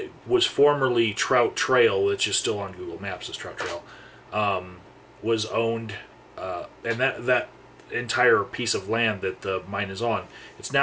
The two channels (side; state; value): both; identical; correlation 1.00